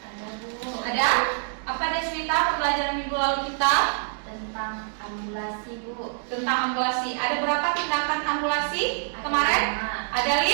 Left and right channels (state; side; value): silent; left; digital silence